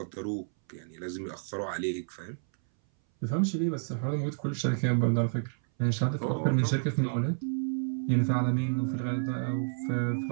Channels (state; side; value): silent; left; 58 dB below the other